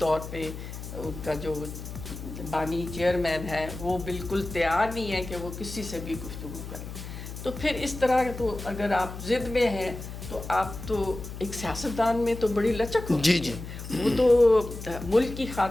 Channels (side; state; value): left; noise; hum, 10 dB below the sound